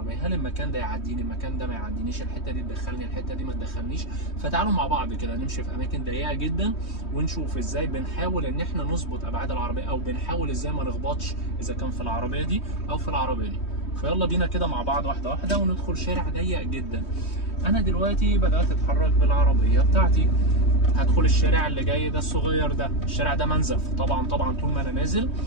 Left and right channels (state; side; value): late; right; 3.2 ms